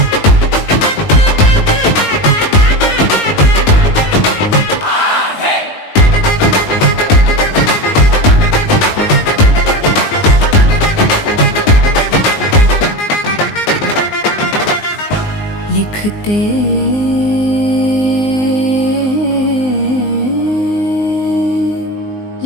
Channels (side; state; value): right; late; 19 ms